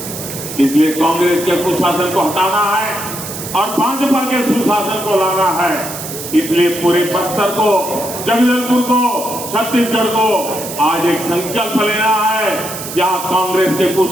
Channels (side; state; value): right; noise; hiss, 9 dB below the sound